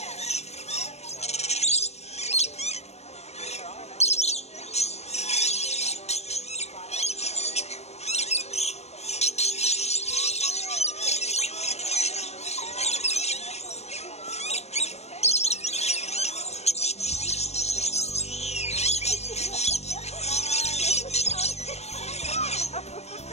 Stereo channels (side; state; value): right; late; 0.31 ms